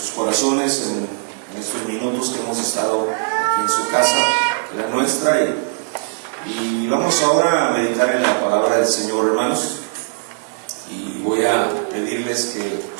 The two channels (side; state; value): left; silent; 66 dB below the other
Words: corazones en estos minutos que hemos estado aquí en su casa, la nuestra, y vamos ahora a meditar en la palabra del Señor, hermanos, y voy a pedirles que